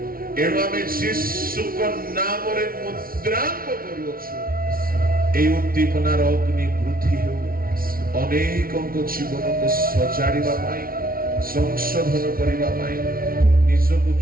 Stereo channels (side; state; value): left; late; 0.43 ms